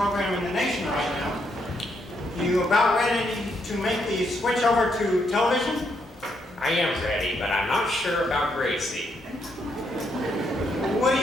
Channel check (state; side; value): normal; both; correlation 0.76